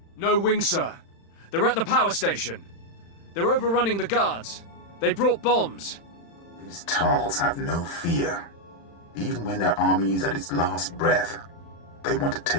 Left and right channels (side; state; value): right; late; 35 ms